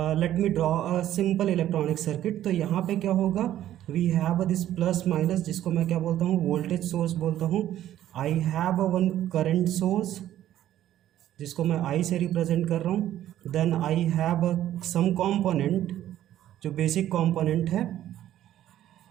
let me draw a simple electronic circuit. तो यहाँ पे क्या होगा, we have this plus minus, जिसको मैं क्या बोलता हूँ, वोल्टेज सोर्स बोलता हूँ। I have one current source जिसको मैं आई से रिप्रेजेंट कर रहा हूँ। Then I have some component जो बेसिक कॉम्पोनेंट है,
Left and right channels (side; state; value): left; quieter; 12.4 dB